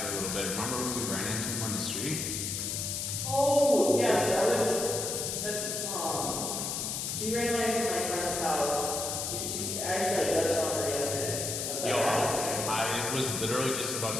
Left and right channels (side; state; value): left; noise; hiss, 2 dB below the sound